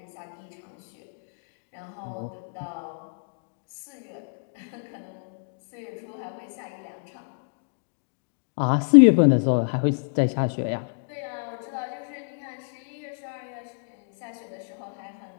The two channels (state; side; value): silent; right; digital silence